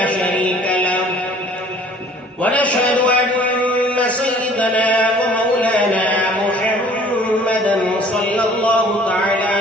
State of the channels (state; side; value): normal; both; correlation 0.52